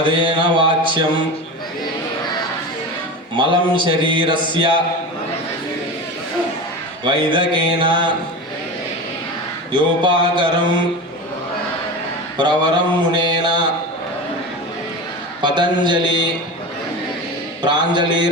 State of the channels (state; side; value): normal; both; correlation 0.28